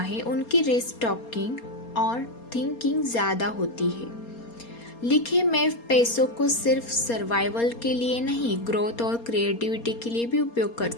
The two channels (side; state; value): right; late; 4.3 ms